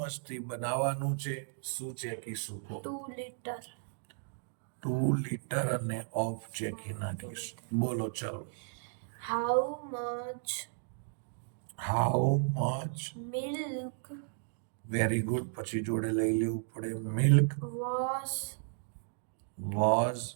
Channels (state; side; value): silent; left; digital silence